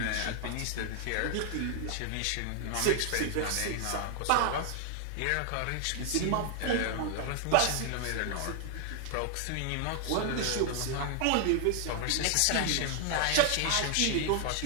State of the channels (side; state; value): both; different; correlation 0.00